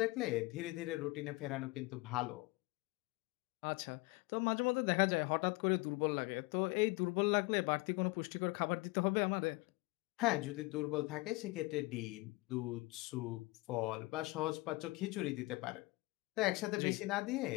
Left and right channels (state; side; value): quieter; right; 23.0 dB